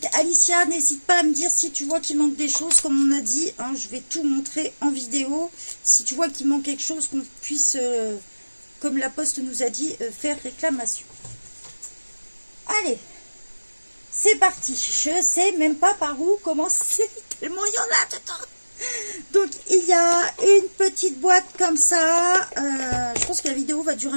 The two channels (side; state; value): both; inverted; correlation -1.00